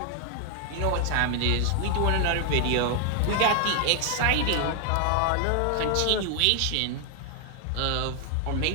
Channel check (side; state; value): both; different; correlation 0.00